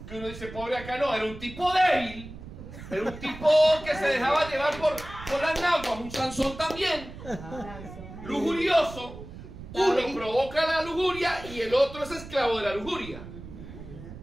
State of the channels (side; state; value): right; noise; rumble, 14 dB below the sound